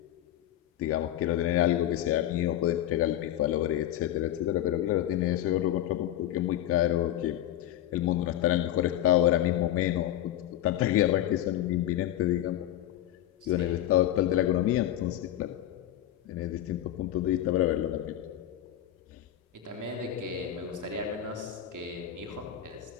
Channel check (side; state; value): right; quieter; 12.5 dB